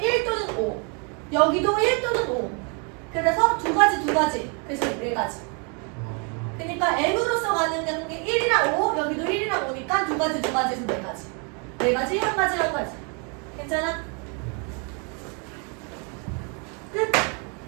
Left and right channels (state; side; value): quieter; left; 36.0 dB